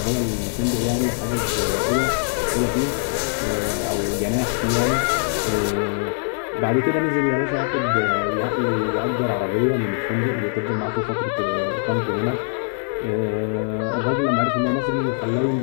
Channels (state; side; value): silent; right; 55 dB below the other